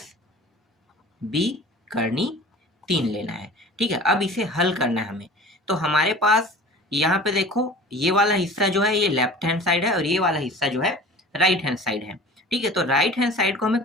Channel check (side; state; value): both; normal; correlation 0.41